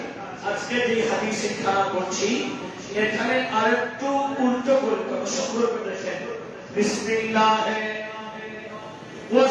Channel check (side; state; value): both; identical; correlation 1.00